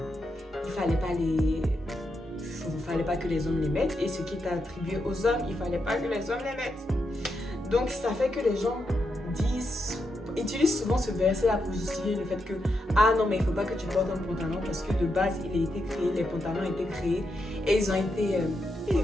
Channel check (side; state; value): both; normal; correlation 0.84